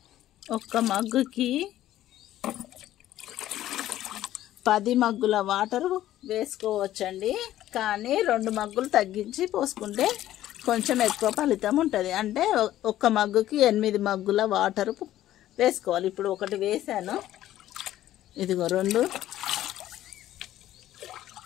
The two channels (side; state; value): right; quieter; 13.4 dB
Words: ఒక్క మగ్గుకి 10 మగ్గుల వాటర్ వేసుకోవచ్చండి. కానీ 2 మగ్గులు తగ్గించి పోసుకుంటే కొంచెం ఎక్కువ ఫలితం ఉంటుంది. అంటే ఒక్క మగ్గుకి 8 మగ్గుల వాటర్ వేసుకోవాలి. ఇప్పుడు ఒకటి వేసాను, ఇదిగో 2,